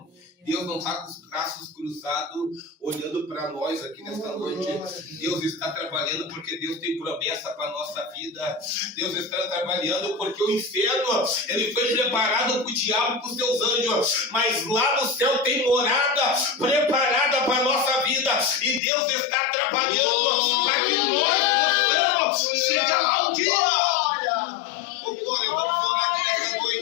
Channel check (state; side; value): drops out; right; at 18.8 s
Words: Deus não está com os braços cruzados olhando para nós aqui nesta noite. Deus está trabalhando porque Deus tem promessa para a nossa vida. Deus está trabalhando porque o inferno, ele foi preparado para o diabo e para os seus anjos, mas lá no céu tem morada preparada para a nossa vida, e Deus está trabalhando para que nós possamos chegar lá um dia. Oh, glória, vamos orar aqui nessa